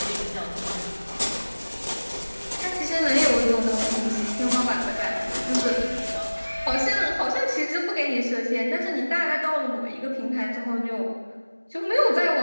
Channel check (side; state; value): both; inverted; correlation -1.00